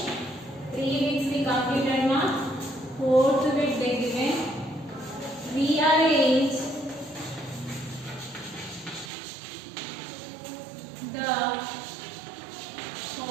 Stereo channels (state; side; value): drops out; left; at 9.1 s